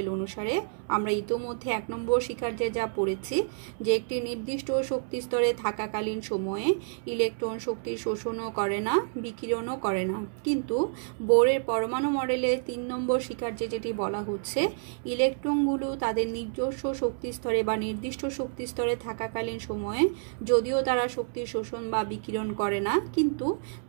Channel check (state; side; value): silent; left; 59 dB below the other